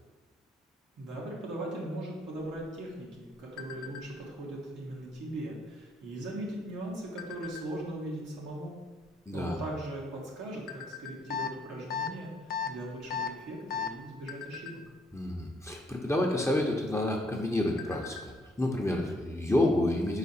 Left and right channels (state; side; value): normal; both; correlation 0.71